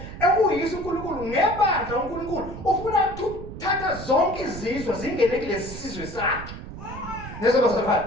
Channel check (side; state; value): right; noise; rumble, 11 dB below the sound